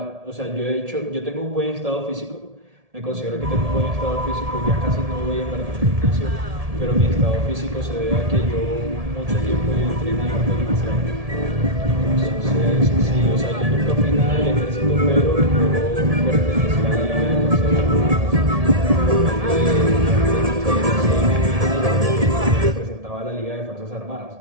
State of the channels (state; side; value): late; left; 1.7 ms